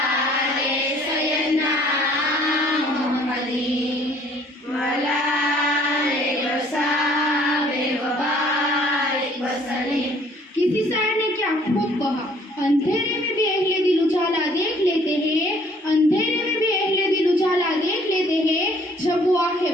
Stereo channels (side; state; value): both; normal; correlation 0.58